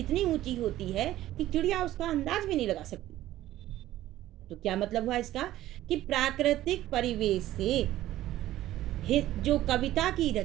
ऊंची होती है कि चिड़िया उसका अंदाज भी नहीं लगा सकती। तो क्या मतलब हुआ इसका, कि प्राकृतिक परिवेश से जो कविता की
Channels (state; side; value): quieter; left; 14.4 dB